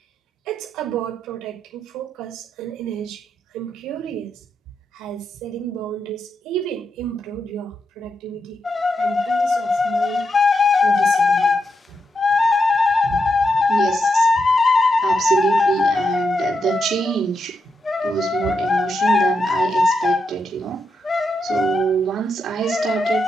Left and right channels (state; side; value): normal; both; correlation 0.83